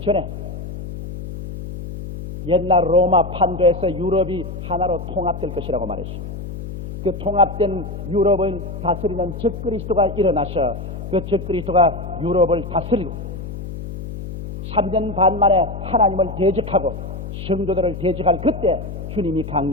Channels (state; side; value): noise; left; hum, 9 dB below the sound